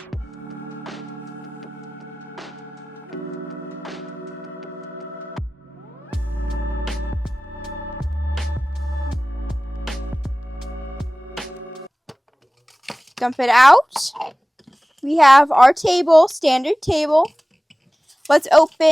Dump it out. We have our table, standard table. Let's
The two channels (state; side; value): normal; both; correlation 0.98